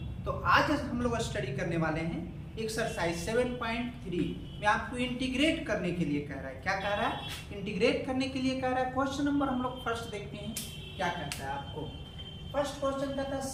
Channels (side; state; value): both; identical; correlation 1.00